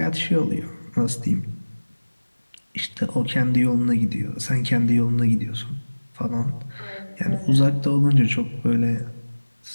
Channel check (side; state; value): both; inverted; correlation -1.00